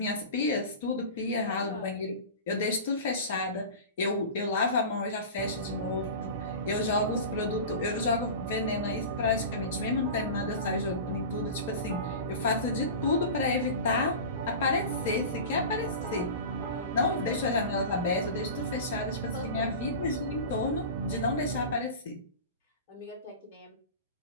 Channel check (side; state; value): both; inverted; correlation -0.32